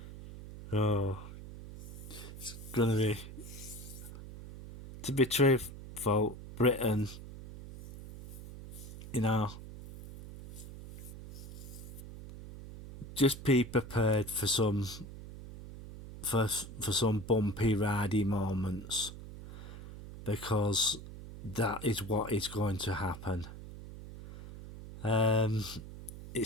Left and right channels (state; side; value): noise; right; hum, 13 dB below the sound